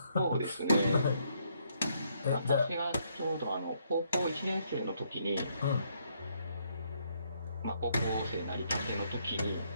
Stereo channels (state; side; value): inverted; both; correlation -0.72